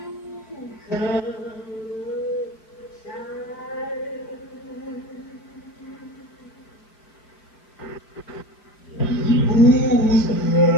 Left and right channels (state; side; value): late; right; 4.5 ms